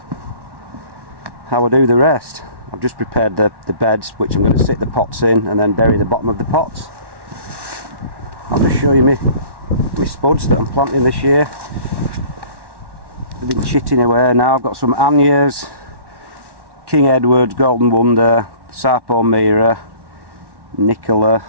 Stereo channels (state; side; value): late; left; 1.1 ms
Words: do the rest. I've just prepared the beds, which I'm going to sit the pots in and then bury the bottom of the pots. I'll just show you my spuds that I'm planting this year. They've been chitting away now. I've got some Annias, King Edward, Golden Wonder, Sarpo Mira, Nicola,